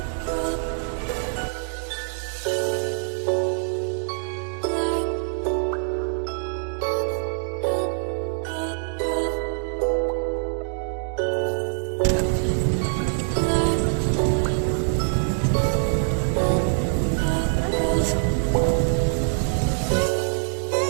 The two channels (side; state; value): left; silent; digital silence